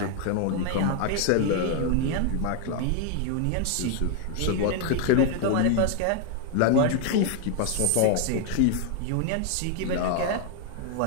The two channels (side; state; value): both; different; correlation 0.00